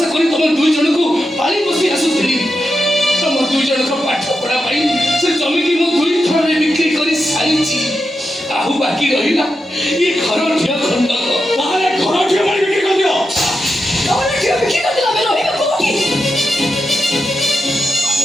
କରି ତମ 2 ଜଣଙ୍କୁ ପାଳି ବସି ଆସୁଥିଲି। ତମ 2 ଜଣଙ୍କ ପାଠ ପଢ଼ା ପାଇଁ ସେ ଜମିକି ମୁଁ 2 ଥରରେ ବିକ୍ରି କରି ସାରିଛି। ଆଉ ବାକି ରହିଲା ଏ ଘର ଝିଅ ଖଣ୍ଡକ। ତାହେଲେ ଘର ଝିଅ ବାଡ଼ି ବିକ୍ରି କରିଦିଅ। ଘର ଝିଅ ବିକ୍ରି କରିଦେଲେ ଆମେ ରହିବା କୋଉଠି?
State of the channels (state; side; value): normal; both; correlation 0.87